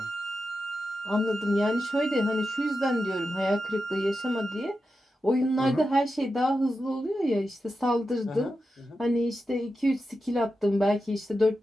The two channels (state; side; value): normal; both; correlation 0.90